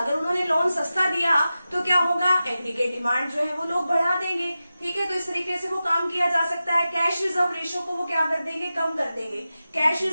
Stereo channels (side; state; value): both; inverted; correlation -0.93